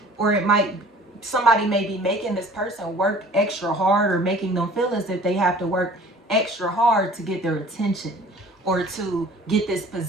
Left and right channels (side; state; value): both; normal; correlation 0.49